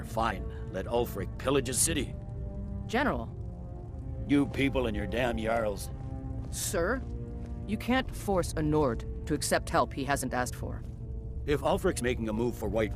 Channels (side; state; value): both; identical; correlation 1.00